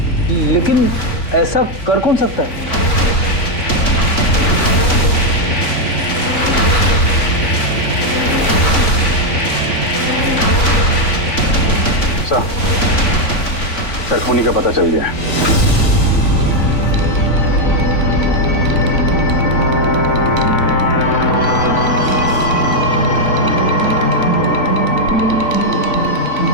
लेकिन ऐसा कर कौन सकता है? सर, खूनी का पता चल गया है।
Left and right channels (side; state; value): right; late; 3.5 ms